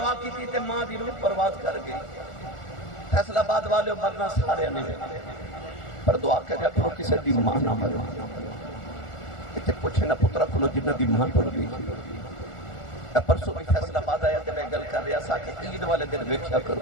کی تے ماں دی روح پرواز کر گئی فیصل آباد والے مرنا سارے نہیں پر دعا کریا کرو کسی دی ماں نہ مرے اتنے پوچھے نہ پترا کھلو جنہ دی ماں ٹر گئی پرسوں بھی فیصل آباد آیا تے میں گل کر رہا سا کہ عید والے دن ویکھیا کرو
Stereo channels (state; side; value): late; right; 1.4 ms